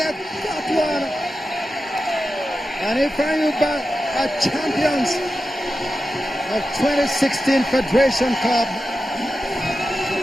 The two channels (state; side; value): normal; both; correlation 0.92